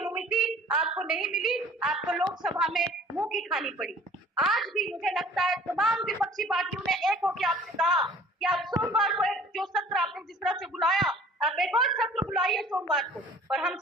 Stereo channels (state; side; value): normal; both; correlation 0.50